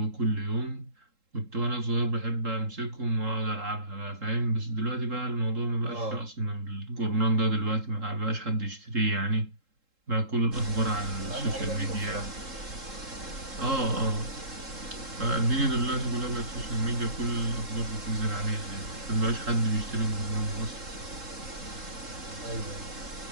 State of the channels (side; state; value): left; late; 3.7 ms